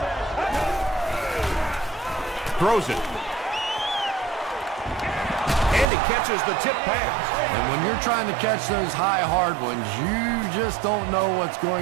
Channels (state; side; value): drops out; left; at 5.9 s